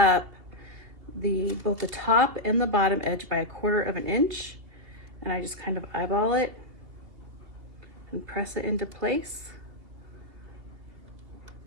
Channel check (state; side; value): late; left; 2.9 ms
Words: both the top and the bottom edge by 1/4 of an inch. And I just kind of eyeball it and press it into place.